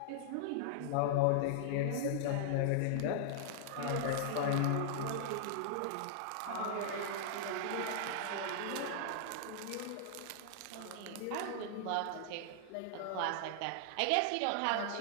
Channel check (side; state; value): both; different; correlation -0.01